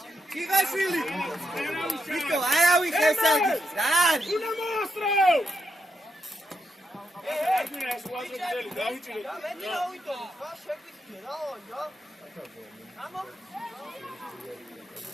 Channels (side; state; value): both; normal; correlation 0.82